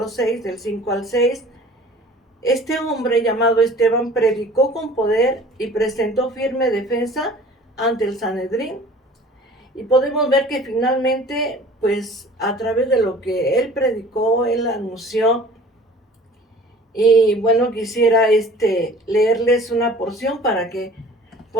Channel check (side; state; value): both; normal; correlation 0.47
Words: 6, del 5 al 6. Este hombre llamado Esteban predicó con poder y presentó firme defensa ante el Sanedrín. Y podemos ver que finalmente, pues a través de lo que él predicó, él anunció. Y bueno, quisiera leerles una porción para que